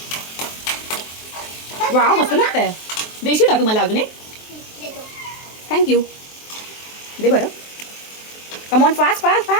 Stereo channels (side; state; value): right; late; 23 ms